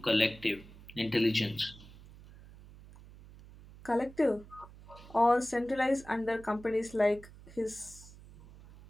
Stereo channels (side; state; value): right; noise; hum, 20 dB below the sound